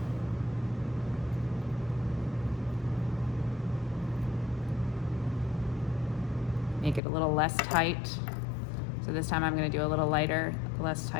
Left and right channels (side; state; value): right; drops out; at 7.0 s